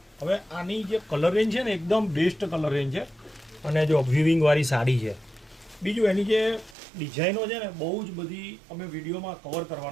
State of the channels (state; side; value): drops out; left; at 6.8 s